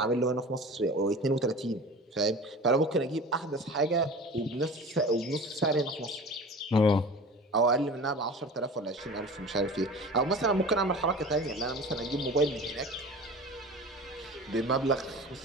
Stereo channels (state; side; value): normal; both; correlation 0.37